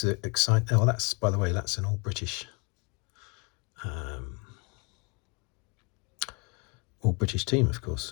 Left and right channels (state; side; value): quieter; right; 31.6 dB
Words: exciting. Oh, that's, by the way, that's an all British team, of